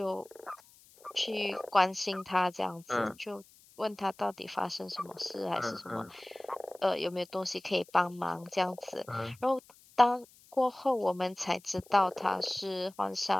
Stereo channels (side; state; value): left; noise; hiss, 26 dB below the sound